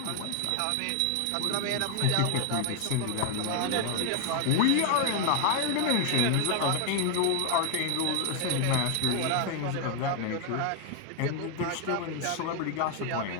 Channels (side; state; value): both; different; correlation 0.01